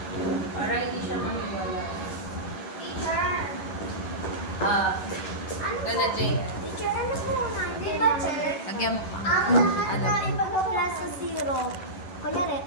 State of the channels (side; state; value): right; late; 11 ms